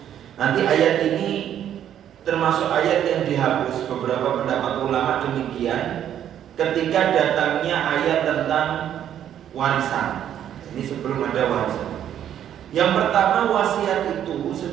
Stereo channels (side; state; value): left; quieter; 10.2 dB